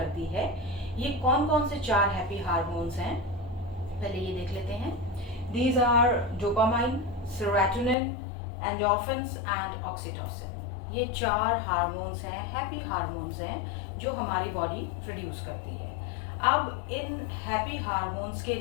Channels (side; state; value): right; drops out; at 8.0 s